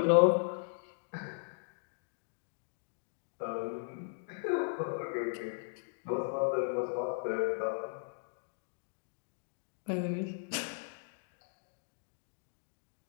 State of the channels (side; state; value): right; silent; digital silence